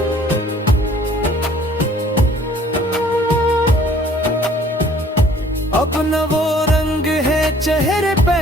अब न वो रंग है चेहरे पे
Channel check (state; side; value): normal; both; correlation 0.56